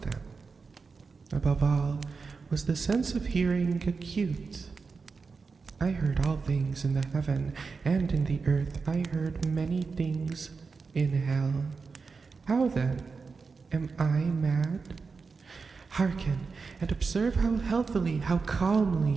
them. Above all, was the sense of hearing acute. I heard all things in the heaven and in the earth. I heard many things in hell. How then? Am I mad? Hearken, and observe how healthily, how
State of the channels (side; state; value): left; quieter; 4.8 dB